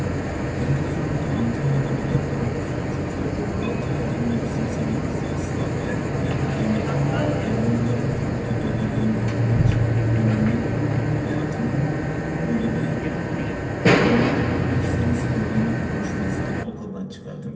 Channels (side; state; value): both; identical; correlation 1.00